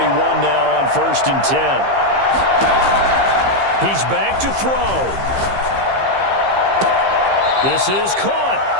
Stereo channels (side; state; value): left; late; 15 ms